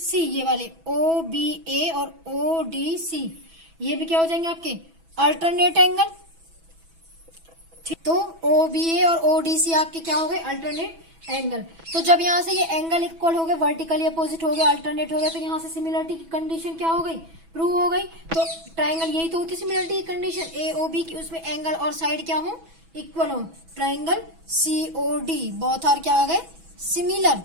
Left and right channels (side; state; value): left; late; 6.1 ms